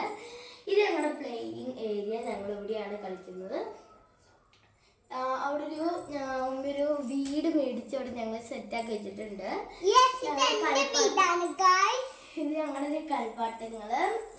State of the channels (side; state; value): both; identical; correlation 1.00